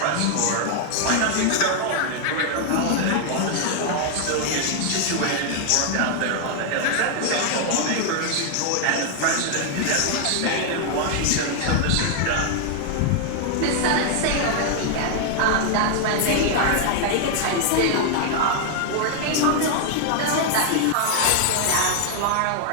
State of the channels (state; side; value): different; both; correlation 0.00